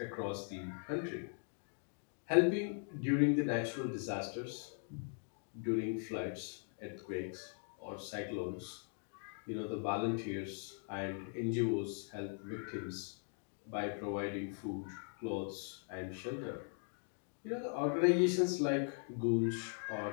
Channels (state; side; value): silent; right; 51 dB below the other